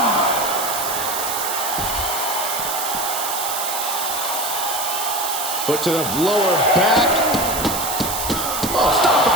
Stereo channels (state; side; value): noise; right; hiss, 3 dB below the sound